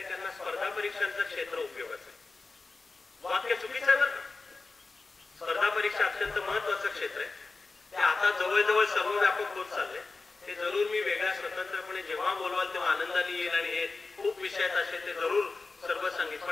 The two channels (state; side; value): quieter; right; 3.8 dB